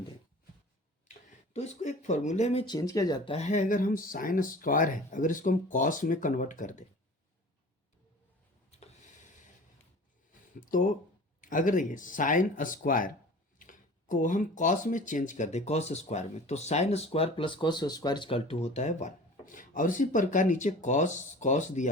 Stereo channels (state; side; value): normal; both; correlation 0.42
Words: दें तो इसको एक फॉर्मूले में चेंज किया जाता है। अगर हम साइन स्क्वायर है, अगर इसको हम कॉस में कन्वर्ट कर दें तो अगर देखिए साइन स्क्वायर को हम कॉस में चेंज कर दें, कॉस स्क्वायर में, तो sine square plus cos square equal to होता है 1। और इसी प्रकार नीचे कॉस